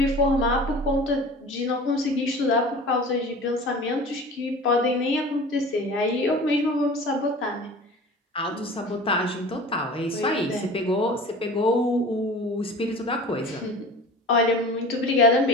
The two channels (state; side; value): normal; both; correlation 0.39